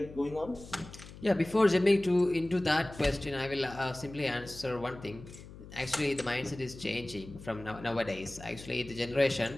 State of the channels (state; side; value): noise; left; hum, 16 dB below the sound